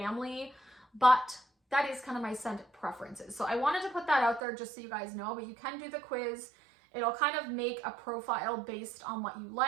but that is kind of my scent preferences. So I wanted to put that out there just so you guys know, but you can do the quiz. It'll kind of make a profile based on what you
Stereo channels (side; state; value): left; drops out; at 4.4 s